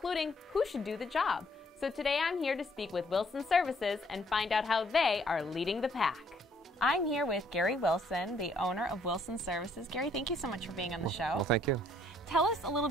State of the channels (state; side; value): normal; both; correlation 0.65